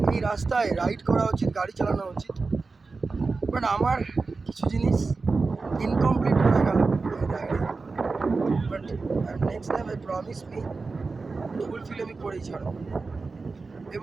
এই রাস্তায় রাইড করা উচিত, গাড়ি চালানো উচিত। বাট আমার কিছু জিনিস ইনকমপ্লিট হয়ে গেল এই রাইডে, but next time I promise me fulfil আমি করেই ছাড়ব।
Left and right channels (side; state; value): left; quieter; 4.1 dB